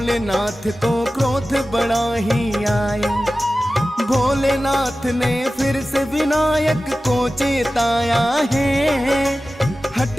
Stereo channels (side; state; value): both; normal; correlation 0.95